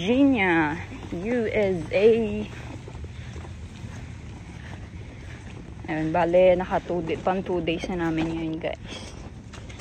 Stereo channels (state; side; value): identical; both; correlation 1.00